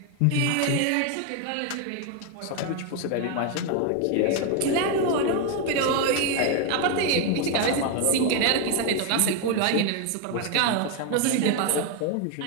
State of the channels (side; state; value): both; different; correlation 0.01